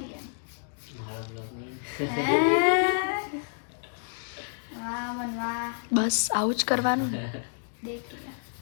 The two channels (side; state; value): right; silent; digital silence